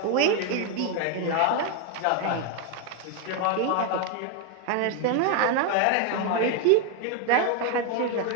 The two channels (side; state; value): both; different; correlation 0.01